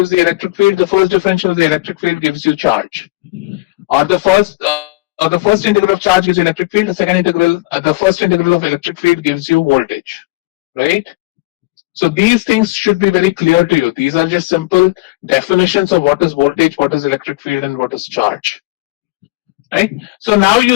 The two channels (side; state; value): right; quieter; 21.4 dB